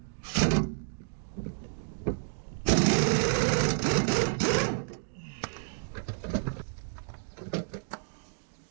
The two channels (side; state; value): left; silent; digital silence